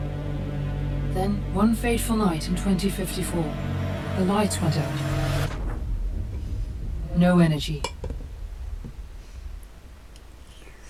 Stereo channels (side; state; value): both; identical; correlation 1.00